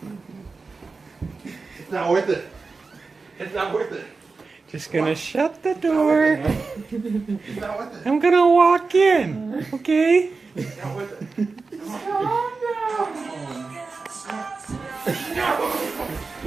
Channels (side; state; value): left; quieter; 4.2 dB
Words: It's not worth it. It's not worth it. Just gonna shut the door. It's not worth it. I'm gonna walk in. Okay. It's not worth it.